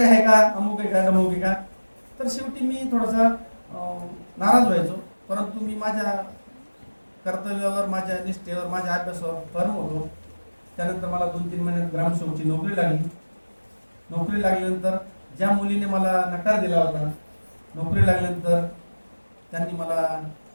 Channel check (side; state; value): both; inverted; correlation -1.00